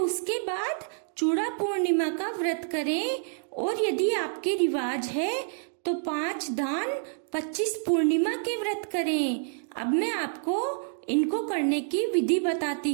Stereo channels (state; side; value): silent; left; digital silence